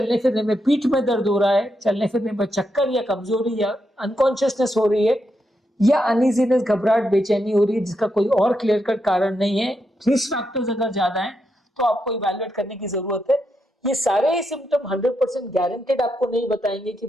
फिरने में पीठ में दर्द हो रहा है, चलने फिरने में चक्कर या कमजोरी या अनकॉन्शियसनेस हो रही है, या अनइजीनेस घबराहट बेचैनी हो रही है जिसका कोई और क्लियर कट कारण नहीं है, रिस्क फैक्टर्स अगर ज्यादा हैं तो आपको इवैल्यूएट करने की जरूरत है। ये सारे ही सिम्टम 100% गारंटेड आपको नहीं बताएंगे कि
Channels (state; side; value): normal; both; correlation 0.83